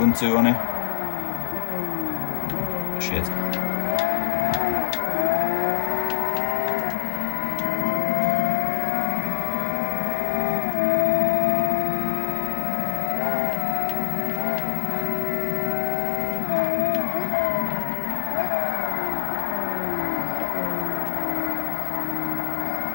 on it. Shit.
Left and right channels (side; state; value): right; silent; digital silence